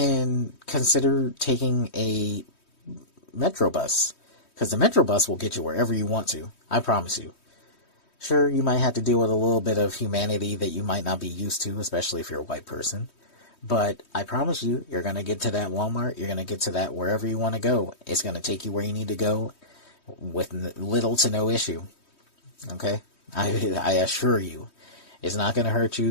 consider taking a Metro bus, because the Metro bus will get you wherever you want to. I promise you. Sure, you might have to deal with a little bit of humanity that you might not be used to, especially if you're a white person. But I promise you, you're going to get to that Walmart. You're going to get to that wherever you want to go. It's going to take you where you need to go with little to no issue. Okay? I assure you. It's not going to hurt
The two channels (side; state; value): right; late; 3.2 ms